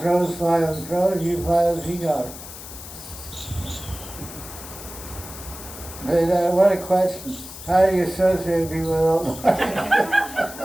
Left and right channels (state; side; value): noise; left; hiss, 13 dB below the sound